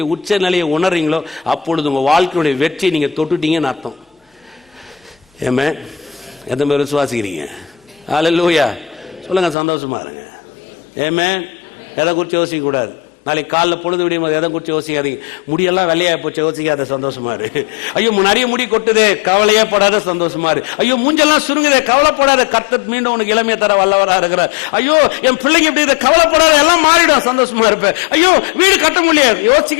உச்ச நிலையை உணர்றீங்களோ அப்பொழுது உங்க வாழ்க்கையுடைய வெற்றி நீங்க தொட்டுட்டீங்கன்னு அர்த்தம். ஆமென். எத்தனை பேர் விசுவாசிக்கிறீங்க? அல்லேலூயா. சொல்லுங்க, சந்தோஷமா இருங்க. ஆமென். எதை குறித்து யோசிக்க கூடாது. நாளைக்கு காலைல பொழுது விடியும் போது எதை குறித்து யோசிக்காதீங்க. முடியெல்லாம் வெள்ளையா போச்சு, யோசிக்காத, சந்தோஷமா இரு. ஐயோ நிறைய முடி கொட்டுதே, கவலையே படாத, சந்தோஷமா இரு. ஐயோ மூஞ்செல்லாம் சுருங்குதே, கவலைப்படாத, கர்த்தர் மீண்டும் உனக்கு இளமையை தர வல்லவரா இருக்கிறார். ஐயோ என் பிள்ளைங்க எப்படி, கவலைப்படாத, எல்லாம் மாறிடும், சந்தோஷமா இருப்பேன். ஐயோ வீடு கட்ட முடியாது,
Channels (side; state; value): right; drops out; at 9.6 s